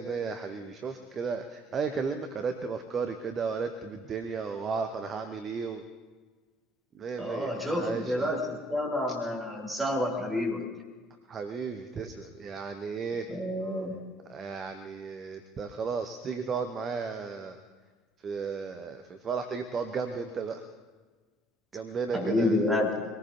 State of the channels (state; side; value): normal; both; correlation 0.64